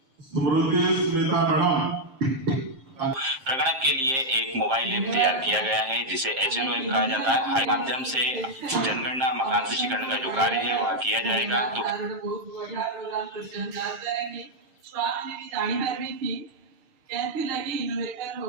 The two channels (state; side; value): late; left; 7.5 ms